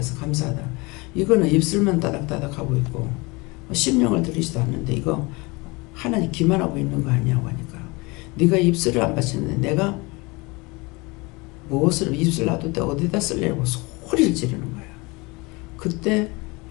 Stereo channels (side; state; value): right; quieter; 25.6 dB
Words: 감사하다. 이거는 입술만 따닥따닥 하고 있고 심령을 들이지도 않는데 이거 하나님 기만하고 있는 거 아니냐고 하니까 네가 입술을 안 바치는데 내가 무엇을 입술 놔둘 때 어디다 쓰려고 소리를 지르는 거야. 그때